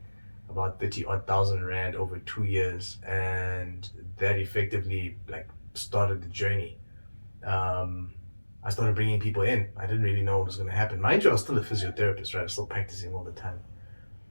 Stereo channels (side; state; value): both; inverted; correlation -1.00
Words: about 30 odd thousand rand over 2 years, and that effectively like started the journey. I started bringing people in. I didn't really know what was going to happen. Mind you, I was still a physiotherapist, right? I was still practicing all the time.